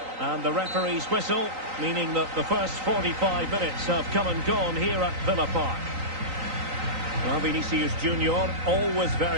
And the referee's whistle, meaning that the first 45 minutes have come and gone here at Villa Park. Well, Vinicius Junior, always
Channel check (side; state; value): left; late; 3.9 ms